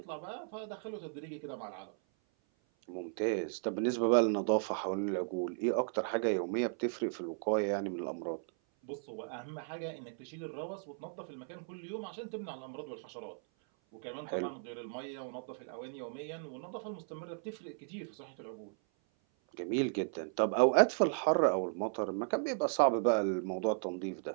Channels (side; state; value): left; silent; 54 dB below the other